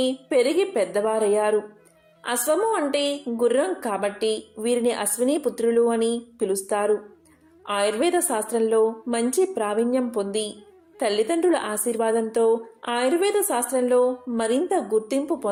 పెరిగి పెద్దవారయ్యారు. అశ్వము అంటే గుర్రం కాబట్టి వీరిని అశ్విని పుత్రులు అని పిలుస్తారు. ఆయుర్వేద శాస్త్రంలో మంచి ప్రావీణ్యం పొంది తల్లిదండ్రుల ఆశీర్వాదంతో ఆయుర్వేద శాస్త్రంలో మరింత గుర్తింపు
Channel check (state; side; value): identical; both; correlation 1.00